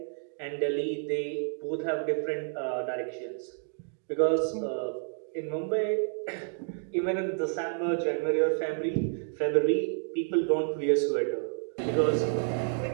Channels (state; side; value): silent; left; 58 dB below the other